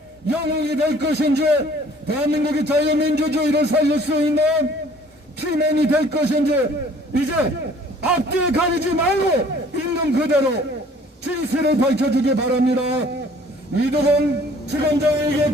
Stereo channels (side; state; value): both; normal; correlation 0.55